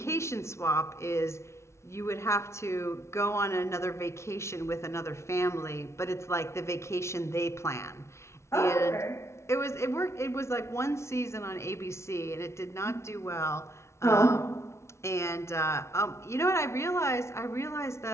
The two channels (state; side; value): late; right; 0.13 ms